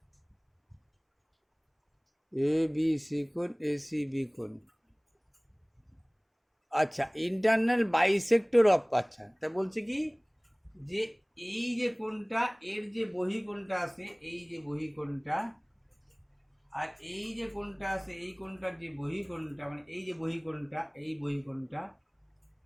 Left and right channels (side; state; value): both; identical; correlation 1.00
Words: ABC কোণ, ACB কোণ, আচ্ছা ইন্টারনাল বাইসেক্টর অফ, আচ্ছা তা বলছে কি যে এই যে কোণটা এর যে বহিঃকোণটা আছে, এই যে বহিঃকোণটা, আর এই যে কোণটা আছে এই কোণটার যে বহিঃকোণটা, মানে এই যে বহিঃকোণটা, এই বহিঃকোণটা